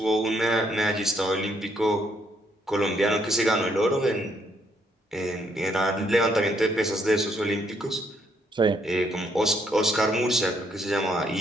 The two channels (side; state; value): both; normal; correlation 0.72